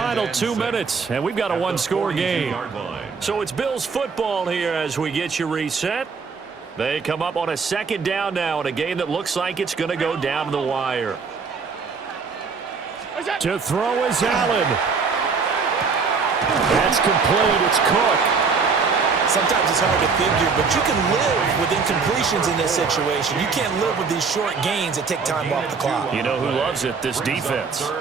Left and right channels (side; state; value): left; quieter; 5.1 dB